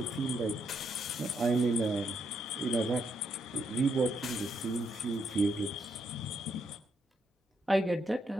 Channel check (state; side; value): normal; both; correlation 0.78